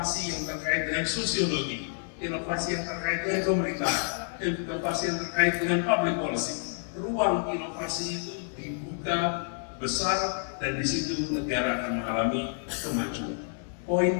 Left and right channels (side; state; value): right; silent; digital silence